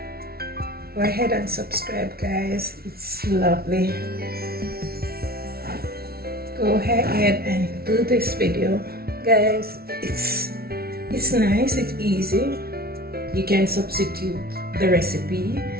Go ahead and subscribe, guys. It's lovely. Go ahead and do this video, guys. It's nice. It's easy. You can substitute the recipe.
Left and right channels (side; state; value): left; late; 0.44 ms